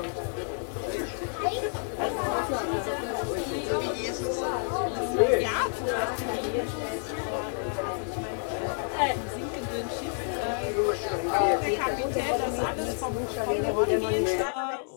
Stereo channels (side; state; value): right; silent; 58 dB below the other